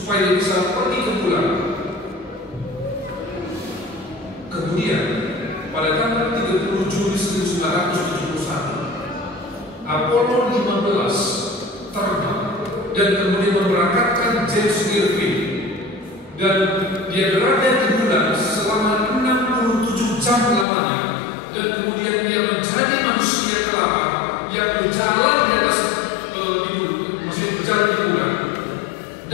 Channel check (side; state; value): right; drops out; at 20.7 s